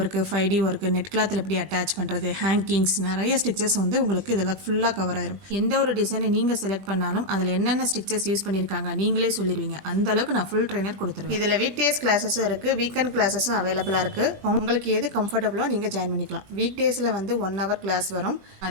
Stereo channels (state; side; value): late; left; 20 ms